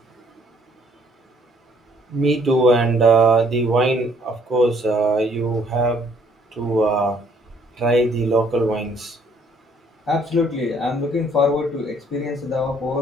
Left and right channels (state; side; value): normal; both; correlation 0.63